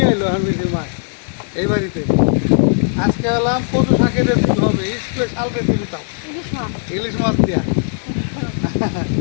এলো হামিদের মা এই বাড়িতে। আজকে হলাম কচু শাকের রেসিপি হবে, স্পেশাল রেসিপি তাও ইলিশ মাছ। ইলিশ মাছ দিয়া।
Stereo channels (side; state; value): right; silent; digital silence